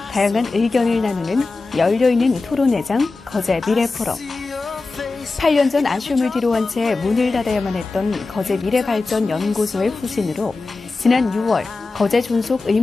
다양한 의견을 나누는 열려있는 토론회장 거제 미래포럼. 8년 전 아쉬움을 뒤로한 채 문을 닫아야만 했던 거제 미래발전연구소의 후신으로 지난 6월 거제 존속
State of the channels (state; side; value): quieter; right; 3.7 dB